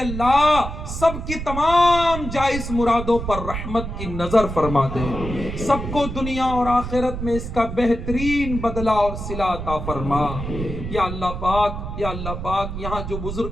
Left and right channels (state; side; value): noise; right; rumble, 6 dB below the sound